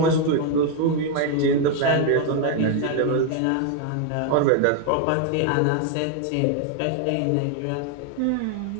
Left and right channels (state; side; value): different; both; correlation 0.01